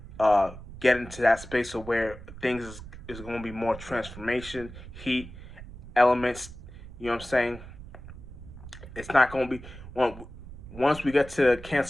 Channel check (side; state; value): right; noise; rumble, 14 dB below the sound